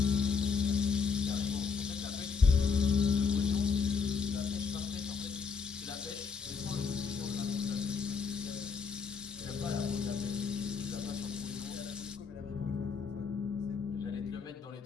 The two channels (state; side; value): quieter; right; 5.5 dB